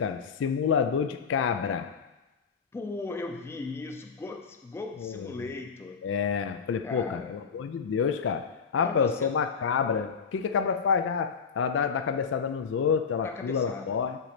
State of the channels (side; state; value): right; quieter; 6.0 dB